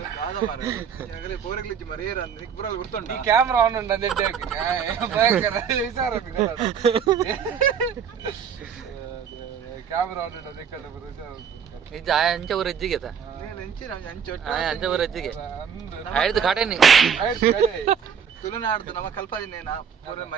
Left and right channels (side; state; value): left; quieter; 7.3 dB